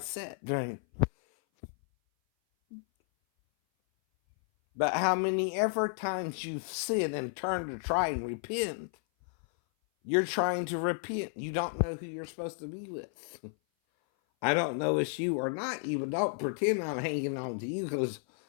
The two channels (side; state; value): right; silent; 56 dB below the other